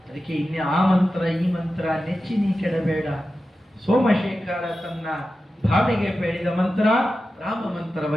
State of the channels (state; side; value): normal; both; correlation 0.93